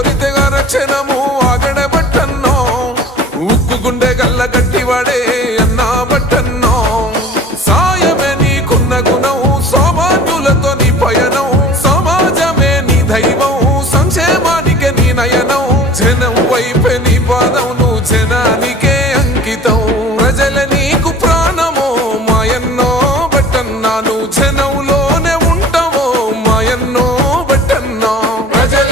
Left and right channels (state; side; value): normal; both; correlation 0.43